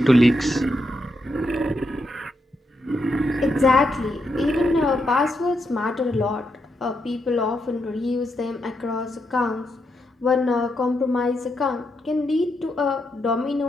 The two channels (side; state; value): both; normal; correlation 0.82